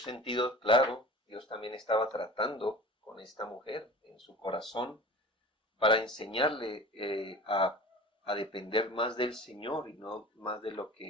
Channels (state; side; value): normal; both; correlation 0.39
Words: claro, Dios también estaba tratando con esta mujer en su corazón para enseñarle a depender más del Señor y no más de lo